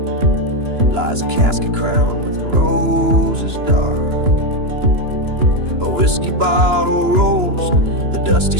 lies a casket crowned with roses dark. A whiskey bottle rolls, the dusty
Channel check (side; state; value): left; late; 2.9 ms